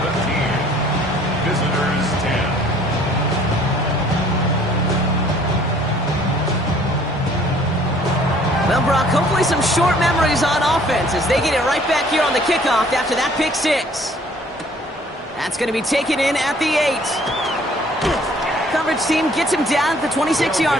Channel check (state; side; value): normal; both; correlation 0.57